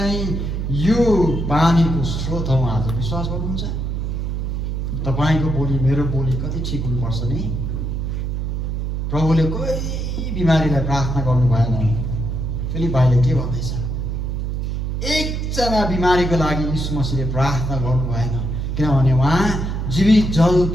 यो पानीको स्रोत हौँ। आज विश्वास गर्नुहुन्छ? तपाईँको बोली मेरो बोली कति ठिक हुनुपर्छ नि। प्रभुले कोही बिमारीलाई प्रार्थना गर्नु भएन। फिलिप्पीले के भन्दैछ, एकजना बिमारीको लागि यीशु मसीहले प्रार्थना गर्नु भएन, किनभने उहाँ जीवित जल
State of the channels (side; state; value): right; noise; hum, 2 dB below the sound